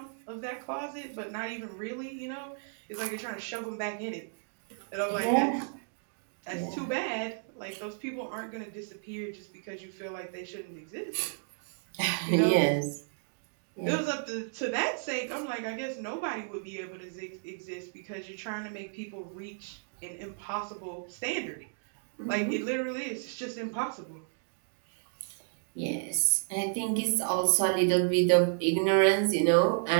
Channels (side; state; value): left; silent; digital silence